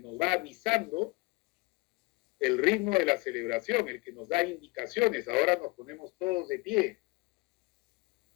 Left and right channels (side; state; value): right; quieter; 23.9 dB